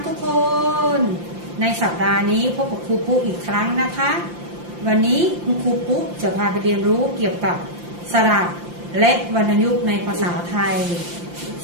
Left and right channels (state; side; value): late; left; 5.8 ms